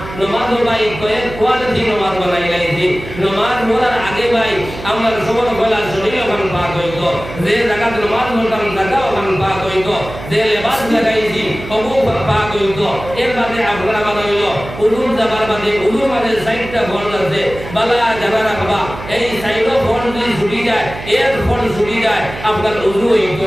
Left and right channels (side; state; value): right; noise; hum, 12 dB below the sound